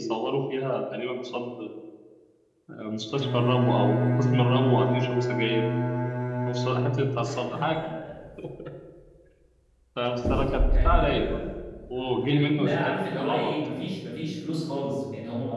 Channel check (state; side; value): identical; both; correlation 1.00